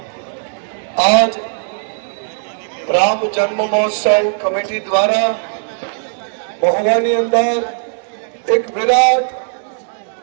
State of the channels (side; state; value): left; silent; digital silence